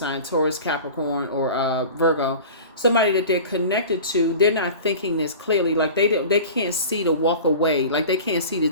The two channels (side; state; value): both; inverted; correlation -0.38